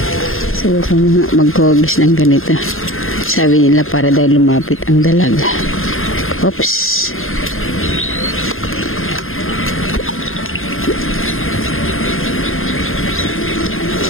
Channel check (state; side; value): late; right; 0.60 ms